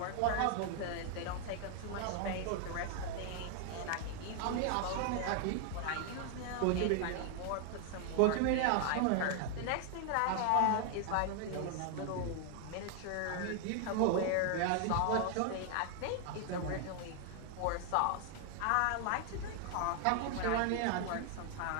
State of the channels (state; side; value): different; both; correlation 0.00